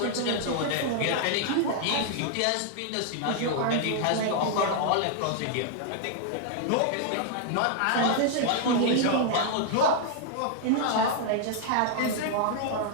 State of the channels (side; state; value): both; different; correlation -0.01